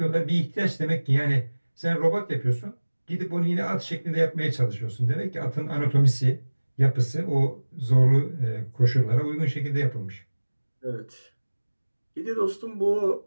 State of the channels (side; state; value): both; inverted; correlation -1.00